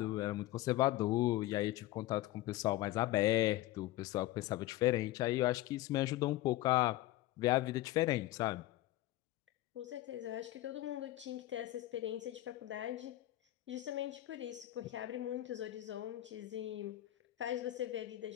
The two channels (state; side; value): quieter; right; 16.1 dB